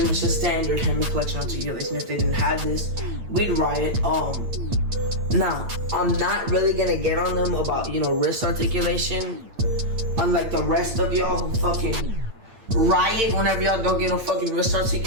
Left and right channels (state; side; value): late; left; 8.9 ms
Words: much the standard Hammond collection articulation. If they didn't have this, we'd riot. Now, I'm not really gonna get on them about, you know, wrist articulation, unlike the rest of y'all who fucking riot whenever y'all don't get no fucking wrist